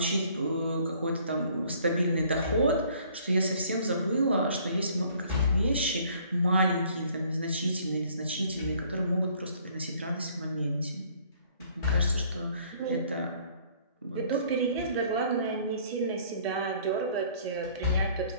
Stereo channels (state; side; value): inverted; both; correlation -0.58